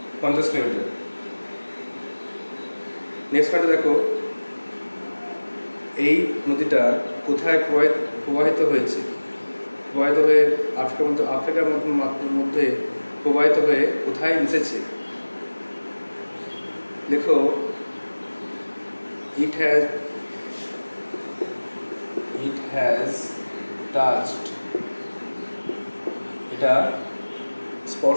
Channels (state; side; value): inverted; both; correlation -1.00